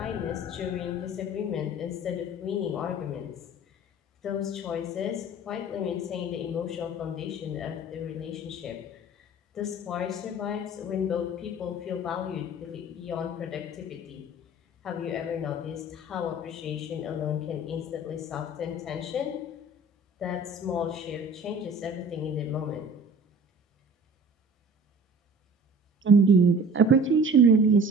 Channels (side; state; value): both; normal; correlation 0.44